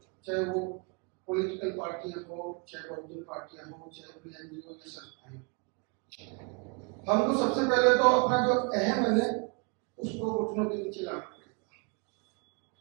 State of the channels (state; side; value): quieter; left; 33.1 dB